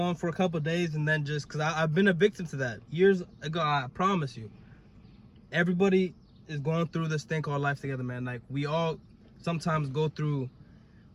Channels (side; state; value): both; identical; correlation 1.00